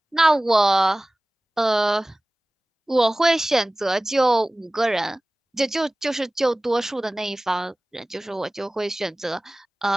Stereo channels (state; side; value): normal; both; correlation 0.98